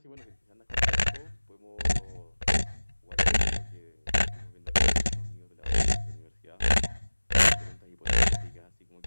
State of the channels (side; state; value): both; inverted; correlation -1.00